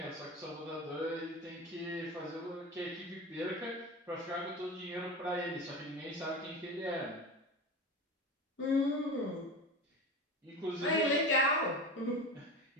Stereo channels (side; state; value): both; normal; correlation 0.28